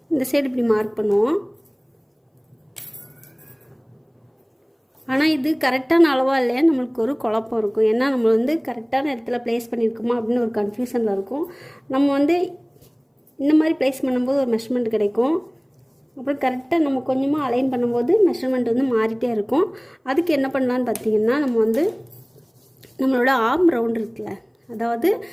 இந்த சைடு இப்படி மார்க் பண்ணுவோம். ஆனால் இது கரெக்டான அளவாக இல்லையா நம்மளுக்கு ஒரு குழப்பம் இருக்கும். ஏன்னா நம்ம வந்து கரெக்டான இடத்துல ப்ளேஸ் பண்ணியிருக்கோமா அப்படின்னு ஒரு கன்ஃபியூஷனில் இருக்கும். நம்ம வந்து இந்த மாதிரி ப்ளேஸ் பண்ணும்போது ஒரு மெஷர்மெண்ட் கிடைக்கும். அப்புறம் கரெக்டாக நம்ம கொஞ்சமாக அலைன் பண்ணும்போது மெஷர்மெண்ட் வந்து மாறிட்டே இருக்கும். அதுக்கு என்ன பண்ணலான்னு பார்த்தீங்கன்னா, நம்ம வந்து நம்மளோட ஆர்ம் ரவுண்ட் இருக்குல்ல, அதாவது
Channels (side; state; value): both; identical; correlation 1.00